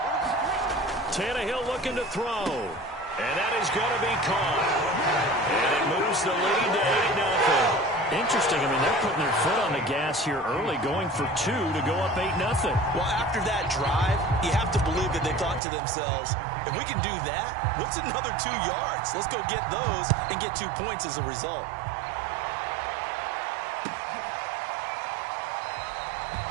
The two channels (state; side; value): drops out; left; at 15.6 s